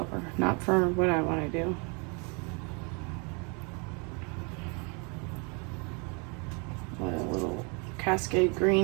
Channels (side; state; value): left; quieter; 33.4 dB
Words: not for what I want to do. Let a little Cascade